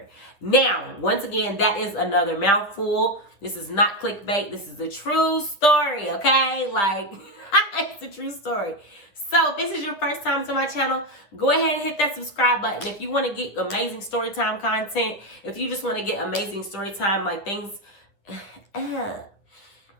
Now, once again, that is another mouthful. This is not clickbait. This is a true story, okay? Like, it's a true story. So if this is your first time to my channel, go ahead and hit that subscribe button. If you want to get amazing storytime content, if you just want to get amazing storytime, like things...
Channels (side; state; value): right; late; 10 ms